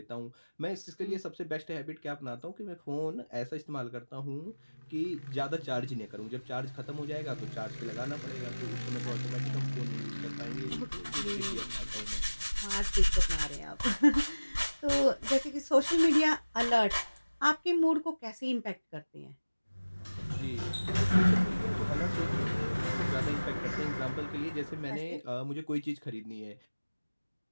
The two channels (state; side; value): inverted; both; correlation -1.00